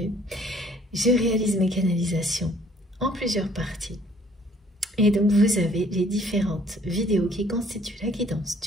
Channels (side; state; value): both; normal; correlation 0.59